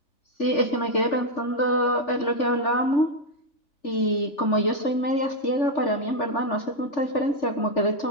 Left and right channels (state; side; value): late; right; 3.4 ms